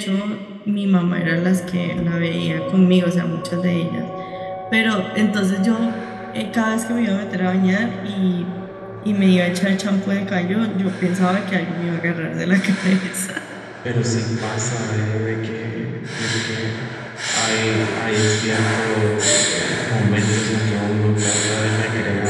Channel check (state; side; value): identical; both; correlation 1.00